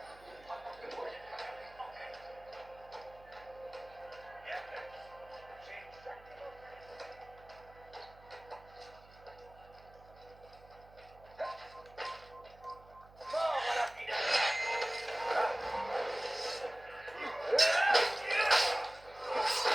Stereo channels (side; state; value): right; noise; hum, 23 dB below the sound